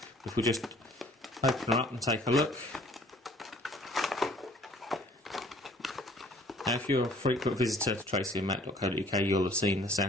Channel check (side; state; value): both; normal; correlation 0.55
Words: If we just open her up and take a look. Now, if you're a frequent visitor to tracingmatt.co.uk, you'll have seen the